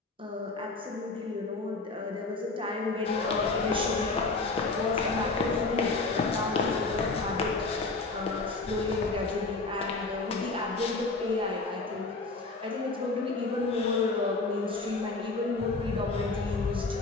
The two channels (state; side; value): quieter; right; 3.6 dB